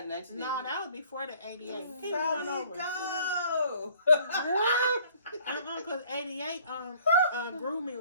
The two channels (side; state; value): both; inverted; correlation -0.58